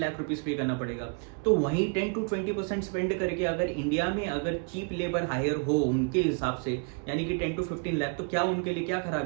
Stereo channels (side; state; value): left; quieter; 38.0 dB